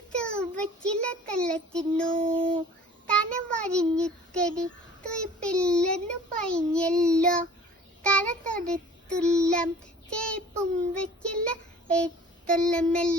വച്ചില തള്ളത്തിന്നു തന വരിഞ്ഞുത്തരി തുയ്പില്ലെന്നു പൈഞ്ഞല്ലോ തല തൊടുത്തുള്ളം ചേപ്പും വെച്ചില്ല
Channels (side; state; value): both; normal; correlation 0.48